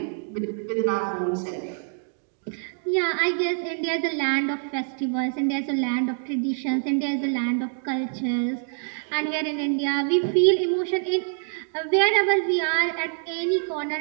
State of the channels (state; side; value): silent; left; 61 dB below the other